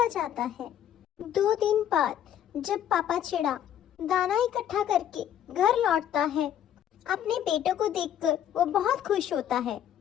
जाता है। 2 दिन बाद जब पापा चिड़ा दाना इकट्ठा करके घर लौटता है, अपने बेटों को देखकर वो बहुत खुश होता है।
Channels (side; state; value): right; quieter; 10.3 dB